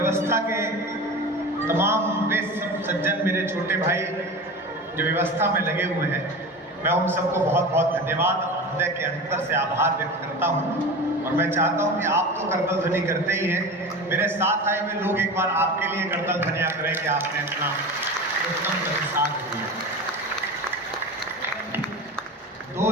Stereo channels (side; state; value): both; normal; correlation 0.30